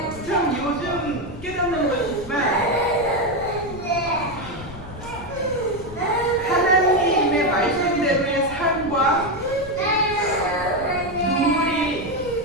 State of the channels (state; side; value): noise; left; rumble, 14 dB below the sound